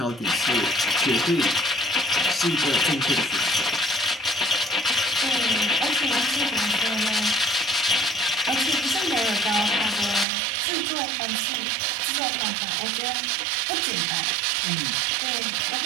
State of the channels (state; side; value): drops out; left; at 10.2 s